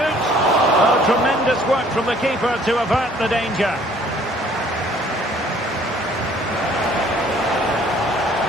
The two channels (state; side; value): normal; both; correlation 0.57